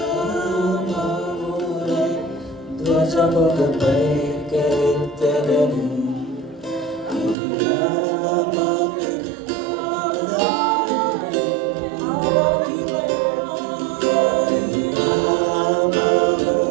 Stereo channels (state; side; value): drops out; left; at 7.4 s